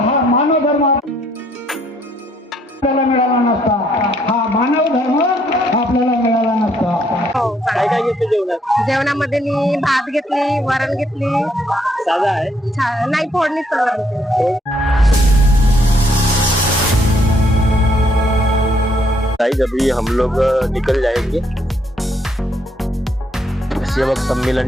मानव धर्म आपल्याला मिळाला नसता, हा मानव धर्म आपल्याला मिळाला नसता. काय काय घेतलं जेवणात? जेवणामध्ये मी भात घेतली, वरण घेतली. साधा आहे? नाही, फोडणीच वरण. अभी हम लोग निकल जाएंगे सेवक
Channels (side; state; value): both; normal; correlation 0.70